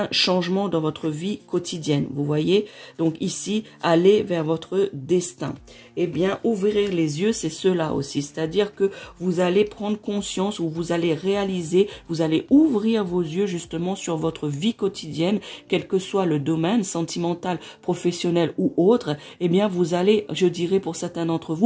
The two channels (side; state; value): both; identical; correlation 1.00